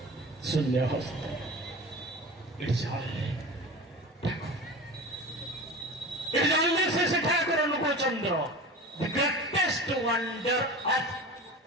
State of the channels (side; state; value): both; normal; correlation 0.33